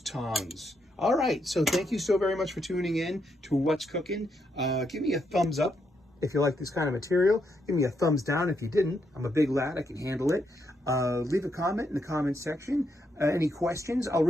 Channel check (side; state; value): both; normal; correlation 0.79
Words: All right, so thank you so very much for tuning in to What's Cooking. Give me a thumbs up if you like this kind of material. Give me a thumbs down if you didn't. I'm a big lad, I can handle it. Leave a comment in the comment section. Any questions, I'll